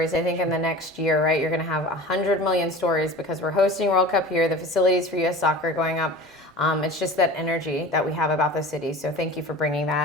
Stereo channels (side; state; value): both; normal; correlation 0.37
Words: I think in the next year, right, you're going to have 100 million stories because we're hosting World Cup here, the facilities for U.S. soccer going up. It's just that energy that we have about the city. So thank you for bringing